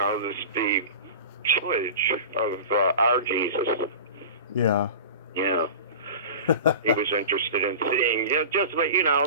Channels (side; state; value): both; inverted; correlation -0.34